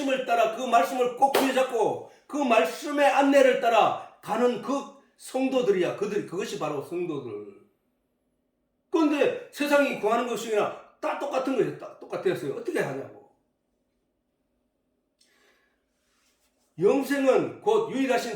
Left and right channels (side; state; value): both; identical; correlation 1.00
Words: 따라 그 말씀을 꼭 붙잡고 그 말씀의 안내를 따라 가는 그 성도들이야. 그것이 바로 성도들. 그런데 세상이 구하는 것이나 다 똑같은 거예요. 다 똑같았어요. 어떻게 하냐고. 영생은 곧